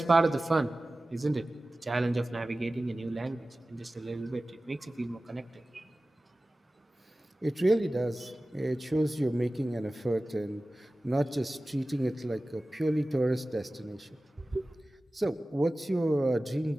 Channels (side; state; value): both; normal; correlation 0.97